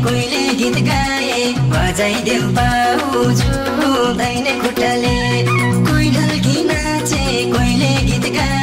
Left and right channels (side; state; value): both; identical; correlation 1.00